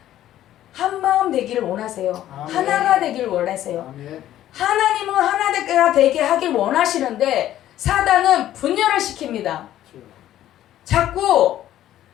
한 마음 되기를 원하세요. 아멘. 하나가 되기를 원하세요. 아멘. 하나님은 하나가 되게 하길 원하시는데 사단은 분열을 시킵니다. 자꾸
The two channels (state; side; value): quieter; right; 12.7 dB